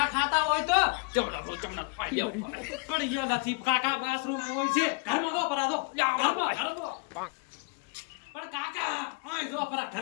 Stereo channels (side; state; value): right; quieter; 31.4 dB